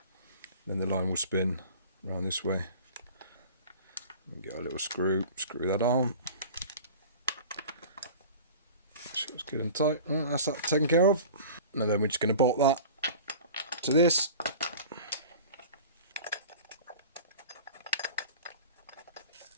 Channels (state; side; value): inverted; both; correlation -0.40